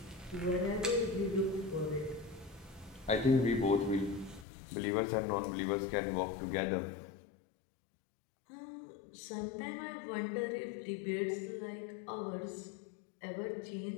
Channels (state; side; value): drops out; right; at 4.5 s